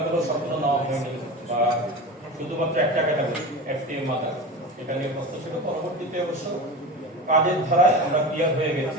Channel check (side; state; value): both; normal; correlation 0.29